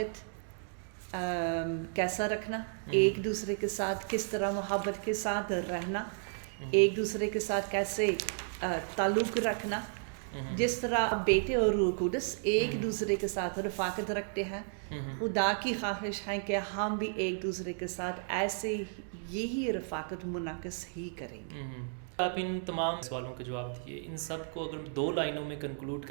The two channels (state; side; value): silent; left; digital silence